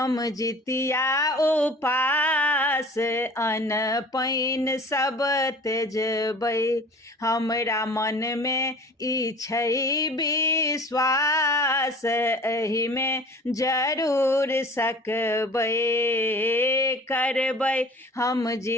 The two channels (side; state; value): both; normal; correlation 0.44